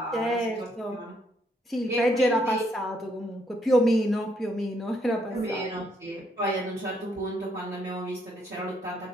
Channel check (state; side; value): normal; both; correlation 0.72